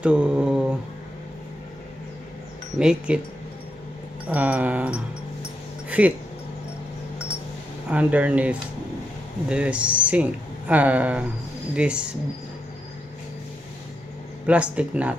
to make it fit underneath the sink, this plastic nut,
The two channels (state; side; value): normal; both; correlation 0.82